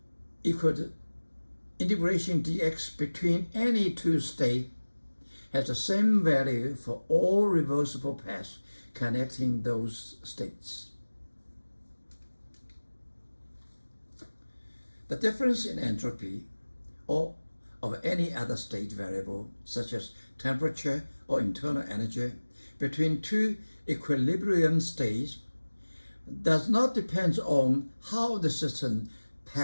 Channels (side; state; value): both; inverted; correlation -1.00